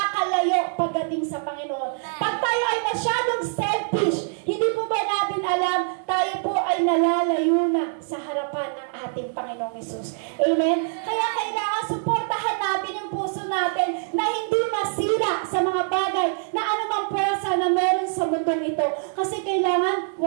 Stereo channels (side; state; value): left; silent; digital silence